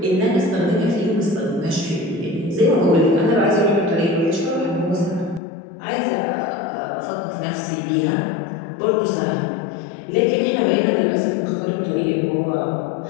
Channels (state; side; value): drops out; right; at 5.4 s